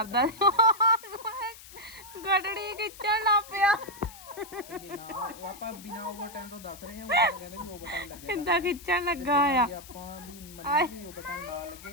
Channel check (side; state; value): left; noise; hiss, 18 dB below the sound